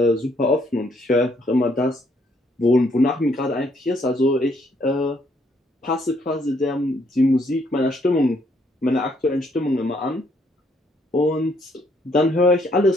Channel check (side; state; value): both; normal; correlation 0.69